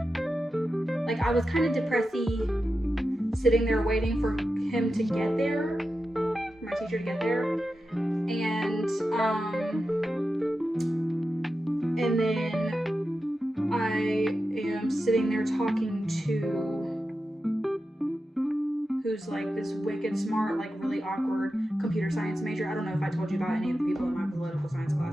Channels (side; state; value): both; normal; correlation 0.91